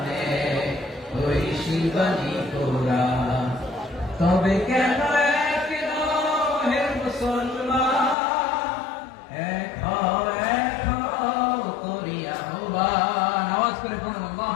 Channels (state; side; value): drops out; right; at 8.2 s